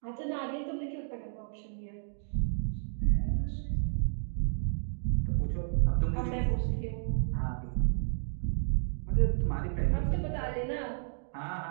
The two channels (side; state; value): left; silent; digital silence